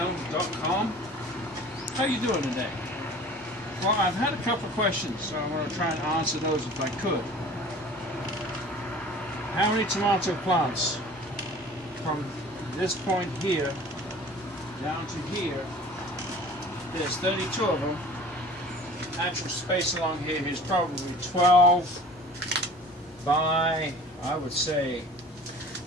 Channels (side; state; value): both; normal; correlation 0.44